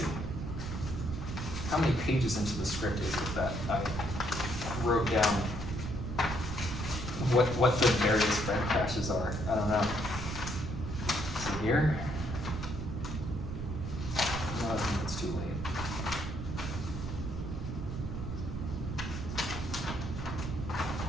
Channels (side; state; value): right; noise; rumble, 5 dB below the sound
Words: how many pages into the script is it that I wrote down what the various frame crashes are? I don't know. So here. No, I think it's too late.